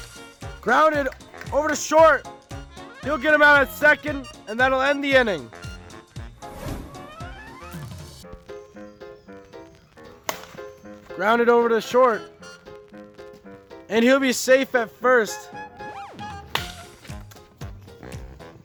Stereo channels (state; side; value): identical; both; correlation 1.00